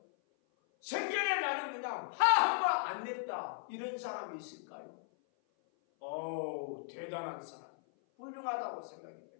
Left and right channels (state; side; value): silent; right; 53 dB below the other